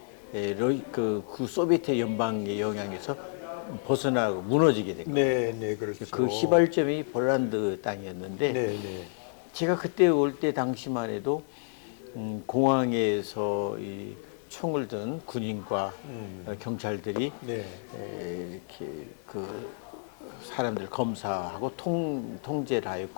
그 소비에트 연방의 영향에서 벗어나고 무너지게 된 거예요. 네, 네, 그렇죠. 그 시발점이 폴란드 땅이었는데 네, 네. 제가 그때 올 때 당시만 해도 공항에서 이 총을 든 군인과 경찰들이 네. 이렇게 그 사람들 검사하고 통제를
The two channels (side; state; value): right; silent; digital silence